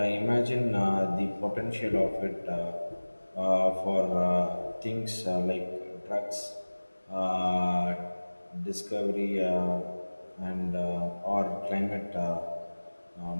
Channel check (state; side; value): inverted; both; correlation -1.00